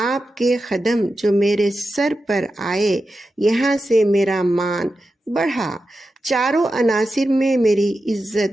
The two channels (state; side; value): normal; both; correlation 0.91